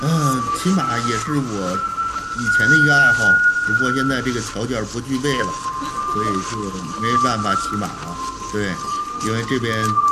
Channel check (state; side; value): identical; both; correlation 1.00